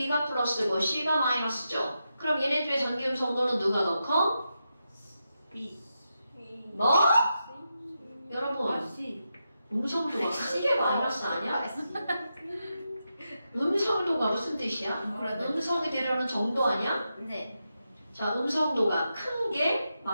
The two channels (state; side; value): inverted; both; correlation -0.87